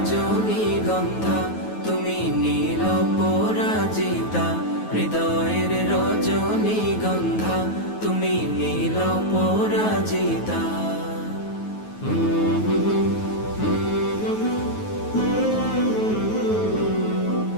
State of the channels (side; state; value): right; late; 9.3 ms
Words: তুমি নীল পরাজিতা, হৃদয়ের রজনীগন্ধা তুমি নীল পরাজিতা।